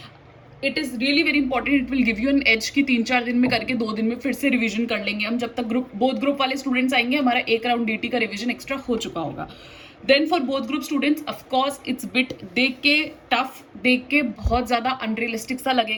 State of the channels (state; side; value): identical; both; correlation 1.00